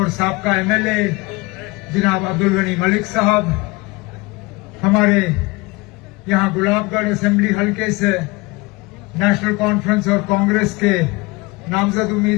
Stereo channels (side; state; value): right; quieter; 24.5 dB